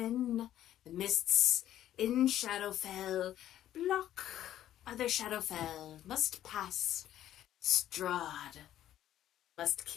The mists in Shadowfell block other Shadowfell. Must pass. Strahd must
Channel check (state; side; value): quieter; right; 12.2 dB